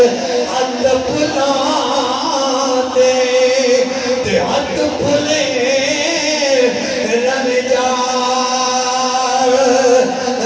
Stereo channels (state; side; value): identical; both; correlation 1.00